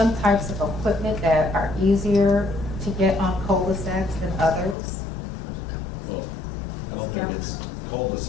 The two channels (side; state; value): right; drops out; at 4.8 s